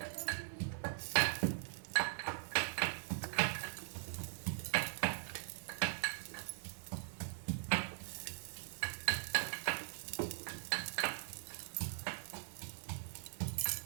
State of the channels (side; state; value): left; silent; 50 dB below the other